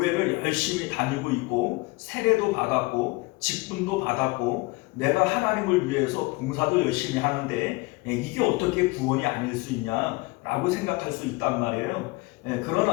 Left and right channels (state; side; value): quieter; right; 24.4 dB